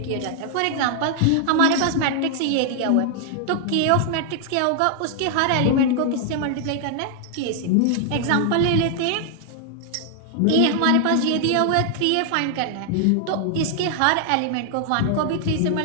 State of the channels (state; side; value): different; both; correlation 0.00